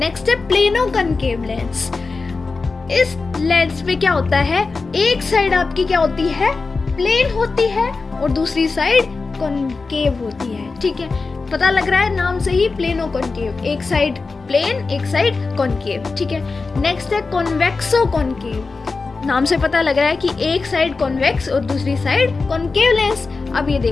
है प्लेनो कॉनकेव लेंस. इस लेंस में क्या होता है, एक साइड आपकी क्या होती है, प्लेन होती है और दूसरी साइड कॉनकेव होती है. ठीक है, पता लग रहा है नाम से ही, प्लेनो कॉनकेव, एक साइड प्लेन एक साइड कॉनकेव. ठीक है, नेक्स्ट है कॉन्वेक्सो कॉनकेव. नाम से पता लग रहा है कि एक साइड कॉन्वेक्स और दूसरी साइड कॉनकेव लेंस. अब ये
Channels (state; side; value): quieter; right; 4.1 dB